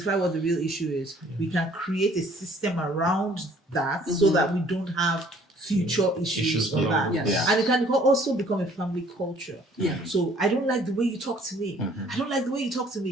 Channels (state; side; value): normal; both; correlation 0.58